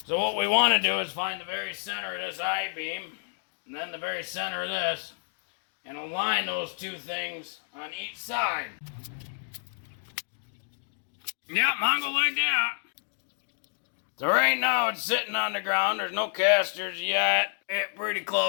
So what we want to do is find the very center of this I-beam, and then the very center of this, and align those 2 things on each side. Yeah, Mongo like that. So right now it's sitting on the ground. There's no casters yet. It's pretty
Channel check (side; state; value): right; silent; 58 dB below the other